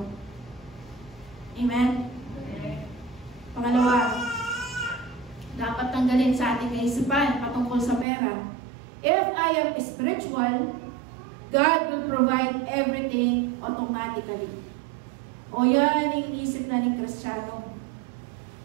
Amen? Pangalawa, dapat tanggalin sa ating kaisipan patungkol sa pera. If I am spiritual, God will provide everything automatically. O yan yung isip na ni Kristiyano.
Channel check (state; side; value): drops out; left; at 8.1 s